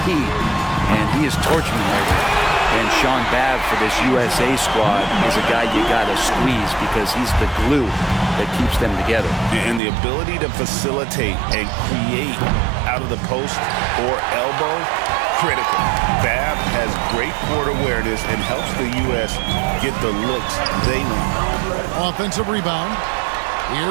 and he is torching him right now. And Sean Babb for this USA squad is a guy you got to squeeze because he's the glue that keeps them together. And the ability to facilitate and create out of the post or elbow, critical. Babb has great court awareness and helps the U.S. get the looks they need. Offensive rebound.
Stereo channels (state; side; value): drops out; left; at 9.8 s